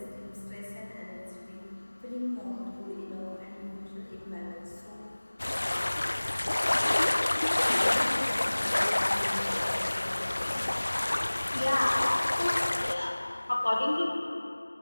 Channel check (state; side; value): inverted; both; correlation -1.00